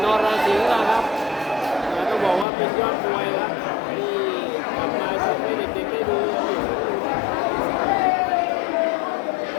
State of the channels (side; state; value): right; drops out; at 2.5 s